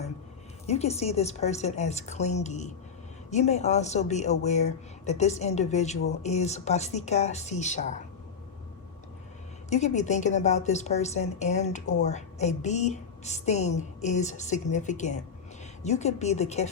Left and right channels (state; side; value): quieter; right; 6.1 dB